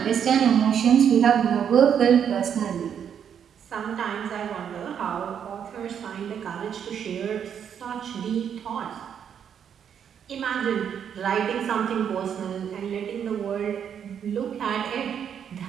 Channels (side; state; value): left; quieter; 8.3 dB